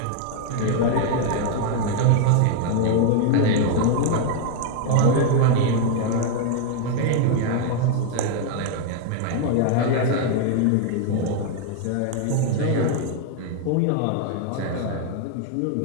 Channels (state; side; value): different; both; correlation 0.00